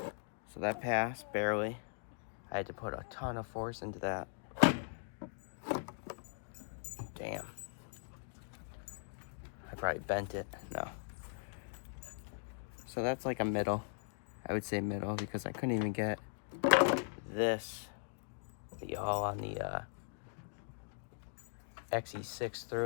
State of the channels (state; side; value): silent; right; digital silence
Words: So that passed, barely. I had to put a ton of force into that. Damn. I probably bent it. No. So that's like a middle. I would say middle because I couldn't even get this, the all on the XE6